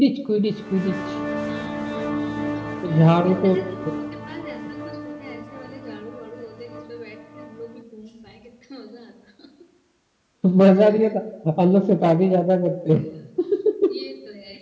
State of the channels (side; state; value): both; identical; correlation 1.00